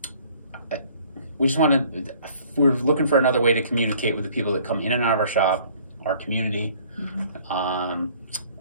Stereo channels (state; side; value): inverted; both; correlation -0.55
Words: we just we're looking for another way to communicate with the people that come in and out of our shop, our community,